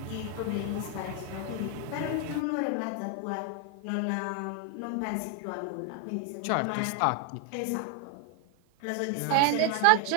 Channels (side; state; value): both; different; correlation 0.00